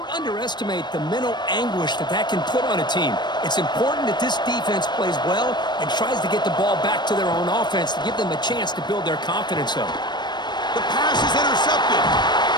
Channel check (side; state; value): right; late; 0.21 ms